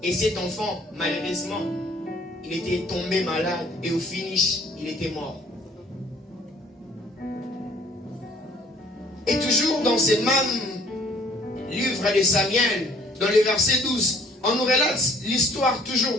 Et cet enfant, malheureusement, il était tombé malade. Et au finish, il était mort. Et toujours dans ce même livre de Samuel, dans le verset 12, on nous relate l'histoire toujours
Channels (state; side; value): normal; both; correlation 0.57